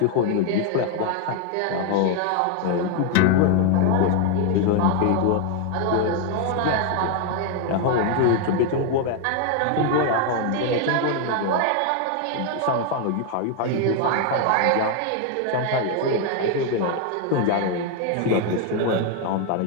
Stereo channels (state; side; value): different; both; correlation 0.00